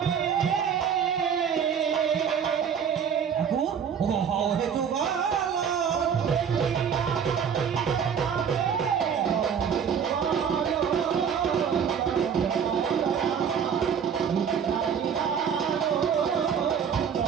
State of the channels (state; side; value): quieter; left; 7.5 dB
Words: ঠাকুর ও হও হে যুগল,